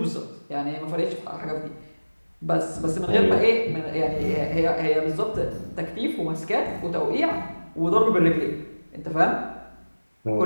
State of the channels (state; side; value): inverted; both; correlation -1.00